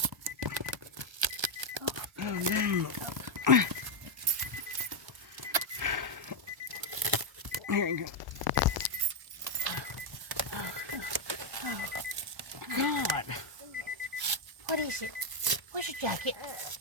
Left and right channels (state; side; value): late; left; 1.1 ms